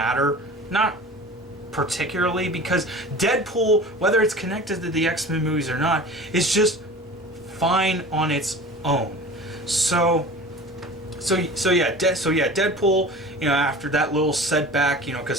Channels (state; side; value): normal; both; correlation 0.38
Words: Not particularly, because Deadpool, whether it's connected to the X-Men movies or not, is just fine on its own. So yeah, Deadpool, after that little setback,